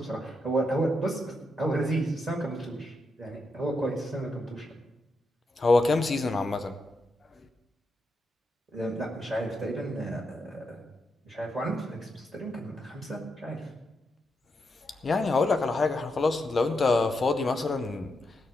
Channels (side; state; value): both; normal; correlation 0.84